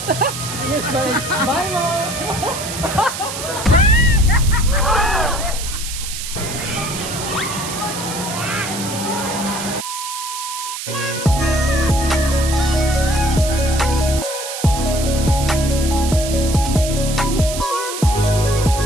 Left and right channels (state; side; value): noise; right; hiss, 7 dB below the sound